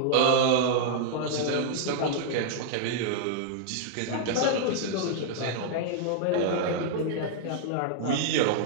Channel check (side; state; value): both; different; correlation -0.01